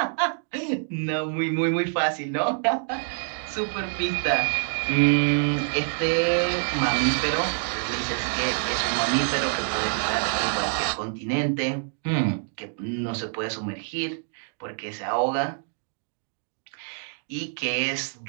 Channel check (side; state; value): left; silent; digital silence